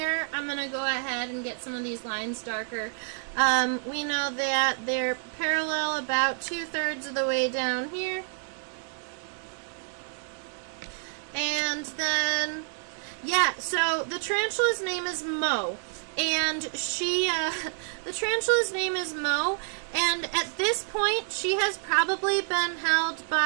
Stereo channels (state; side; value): silent; left; 59 dB below the other